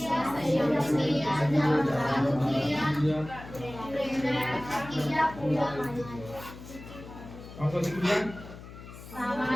कौन कौन सी क्रिया?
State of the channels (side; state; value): left; noise; hum, 15 dB below the sound